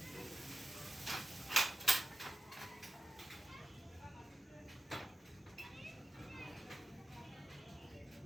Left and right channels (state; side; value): normal; both; correlation 0.93